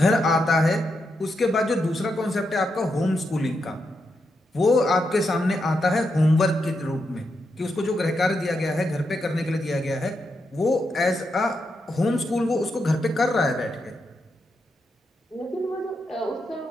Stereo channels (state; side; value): normal; both; correlation 0.84